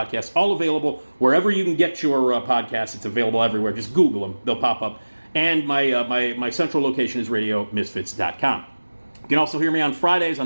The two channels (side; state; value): both; inverted; correlation -1.00